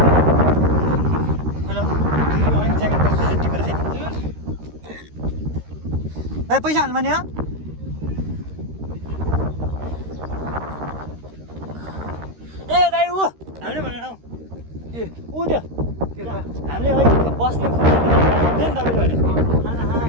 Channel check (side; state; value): left; late; 13 ms